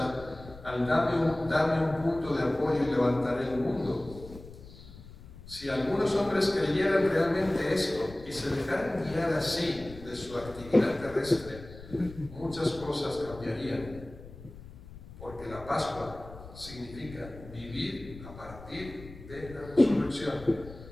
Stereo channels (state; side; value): noise; left; rumble, 16 dB below the sound